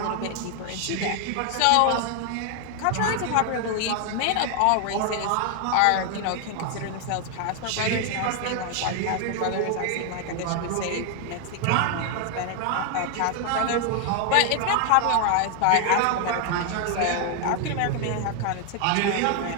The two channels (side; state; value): both; different; correlation 0.00